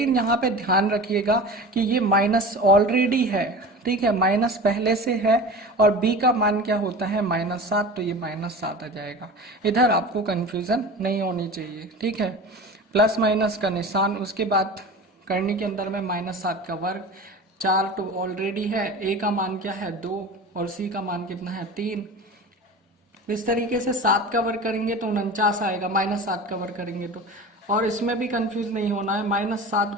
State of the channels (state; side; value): normal; both; correlation 0.34